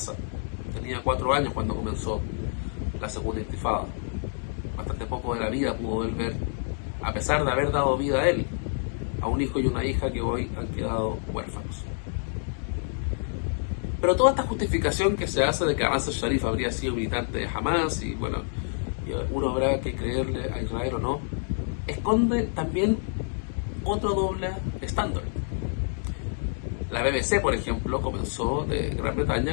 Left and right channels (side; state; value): right; silent; digital silence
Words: Tenía 4 años cuando comenzó la segunda intifada. Bastante poco de la vida pudo él ver, a pesar de haber dado vida a él, a un hijo y una hija que hoy han quedado huérfanos. Pero toda esta justificación que se hace de que Nasser Sharif habría sido militante de Hamas, y bueno, uno habrá que creerle a Israel o no, esconde también otro doble estándar. La BBC, por ejemplo, de Gran